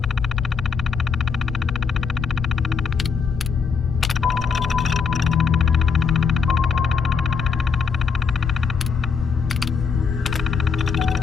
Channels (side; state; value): right; quieter; 5.8 dB